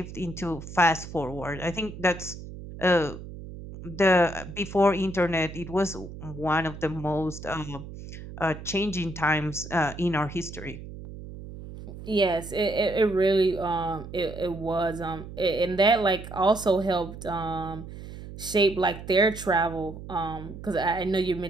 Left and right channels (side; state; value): right; noise; hum, 12 dB below the sound